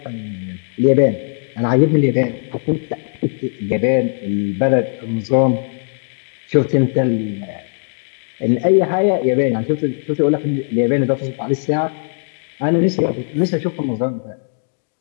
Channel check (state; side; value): silent; right; 67 dB below the other